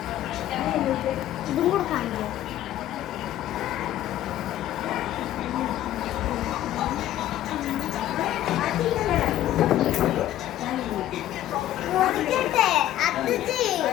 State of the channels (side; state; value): right; quieter; 13.1 dB